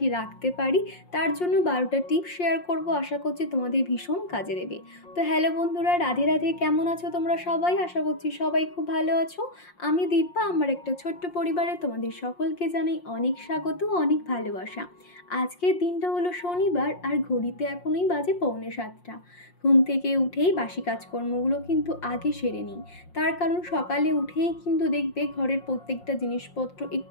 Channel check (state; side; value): late; right; 5.6 ms